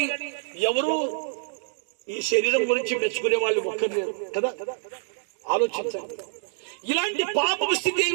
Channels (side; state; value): left; silent; digital silence